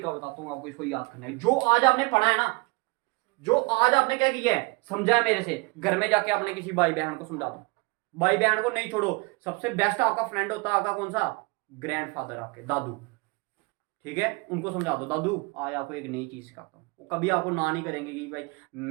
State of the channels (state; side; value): quieter; left; 27.2 dB